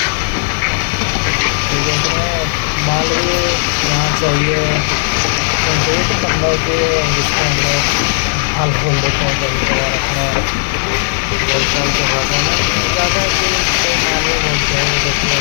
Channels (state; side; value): silent; right; digital silence